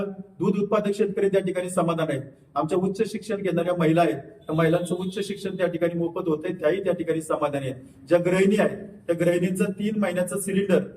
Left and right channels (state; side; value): identical; both; correlation 1.00